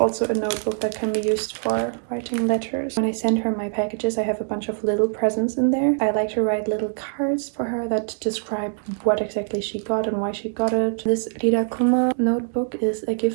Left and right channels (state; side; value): silent; left; digital silence